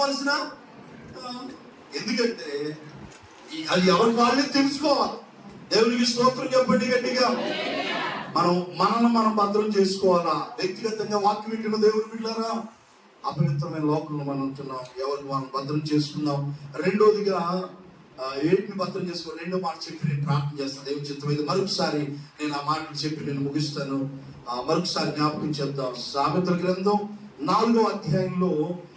ఎందుకంటే అది ఎవరి వాళ్ళే తెలుసుకోవాలి. దేవునికి స్తోత్రం చెప్పండి గట్టిగా. మనం భద్రం చేసుకోవాలా. వ్యక్తిగతంగా వాక్యం వింటున్న దేవుని బిడ్డలారా, అపవిత్రమైన లోకంలో మనం ఉంటున్నాం, ఎవరికి మనం భద్రం చేసుకుందాం. రెండోదిగా ఏంటిని భద్రం చేసుకో, రెండో మాట చెప్పి నేను ప్రార్థన చేస్తాను. దేవుని చిత్తమైతే మరొకసారి నేను ఆ మాటలు చెప్పి నేను ముగిస్తాను. మరొకసారి జ్ఞాపకం చేద్దాం. సామెతల గ్రంథం 4వ అధ్యాయంలో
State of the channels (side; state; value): both; identical; correlation 1.00